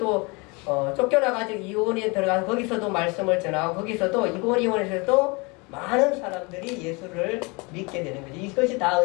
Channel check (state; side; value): quieter; right; 28.2 dB